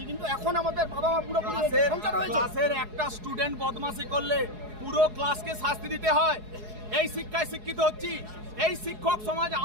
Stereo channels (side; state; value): left; late; 4.7 ms